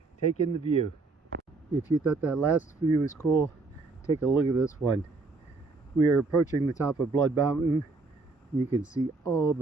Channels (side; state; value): left; quieter; 3.8 dB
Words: take in the view. If you thought that last view was cool, take a look at this one. We are approaching the top of Blood Mountain. You can see all